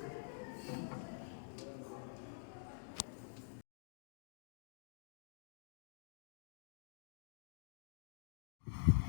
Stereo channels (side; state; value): right; silent; digital silence